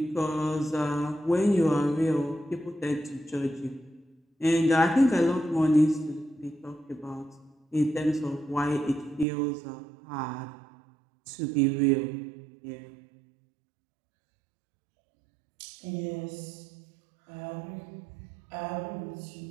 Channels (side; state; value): left; drops out; at 9.2 s